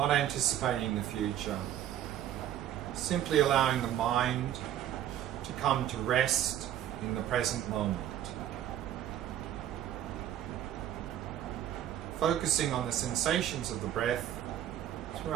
anticipating the future. Simply allowing the mind to come to rest in the present moment. Focusing on the sensations of the breath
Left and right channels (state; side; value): quieter; left; 11.5 dB